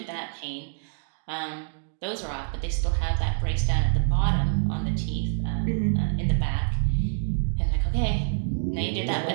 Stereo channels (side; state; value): left; silent; digital silence